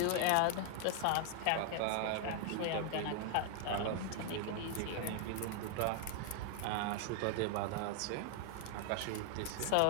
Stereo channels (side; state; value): both; different; correlation 0.00